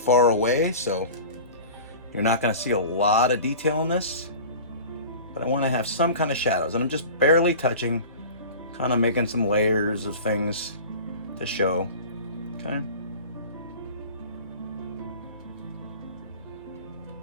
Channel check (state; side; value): inverted; both; correlation -0.38